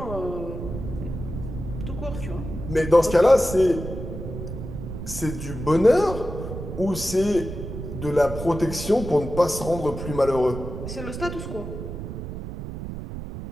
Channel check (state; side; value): noise; right; rumble, 8 dB below the sound